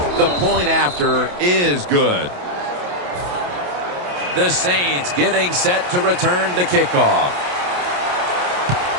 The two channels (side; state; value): left; late; 28 ms